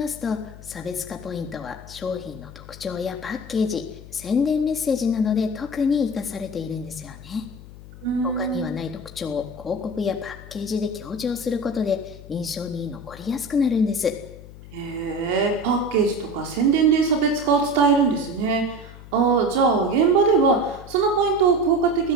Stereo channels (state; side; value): noise; left; hum, 17 dB below the sound